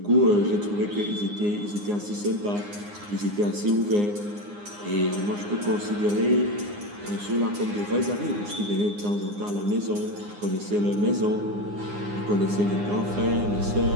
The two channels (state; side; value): late; left; 9.7 ms